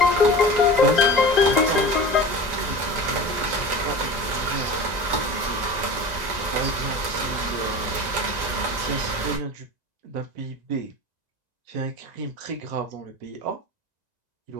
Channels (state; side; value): late; left; 1.9 ms